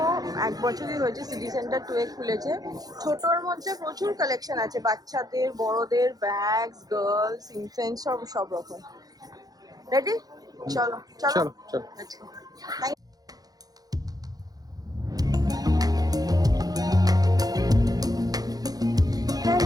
1 বছরই হয়েছে, সিটি সেন্টার 2 এ খুলেছে। ছোটর মধ্যে প্রচুর কালেকশন আছে, বাচ্চাদের, বড়দের, ব্যাগস, গার্লস, ইনফ্যান্ট, সব রকম। রেডি? চলো চলো চলো চলো।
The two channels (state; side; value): late; left; 0.18 ms